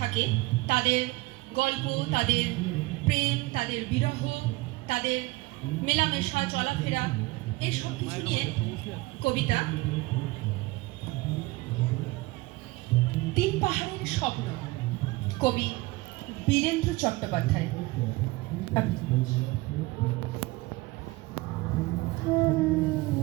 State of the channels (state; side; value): quieter; left; 21.8 dB